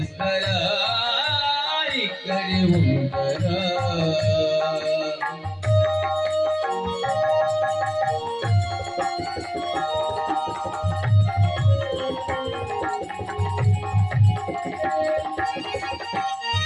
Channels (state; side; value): identical; both; correlation 1.00